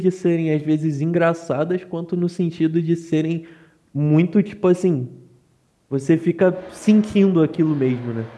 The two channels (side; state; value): both; identical; correlation 1.00